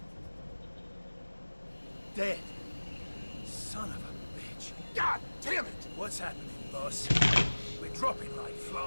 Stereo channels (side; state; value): both; inverted; correlation -1.00